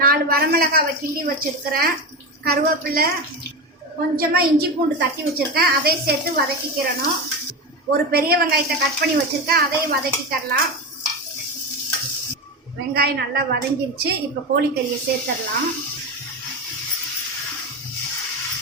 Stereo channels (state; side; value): normal; both; correlation 0.20